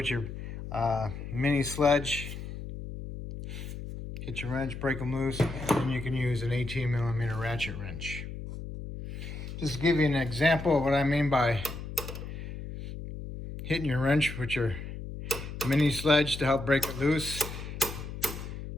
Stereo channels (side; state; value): left; noise; hum, 9 dB below the sound